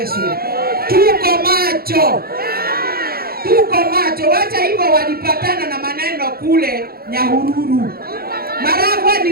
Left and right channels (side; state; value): left; late; 0.44 ms